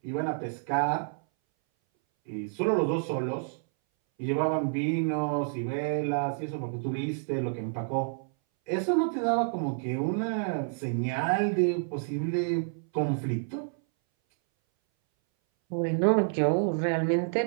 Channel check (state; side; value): silent; left; 59 dB below the other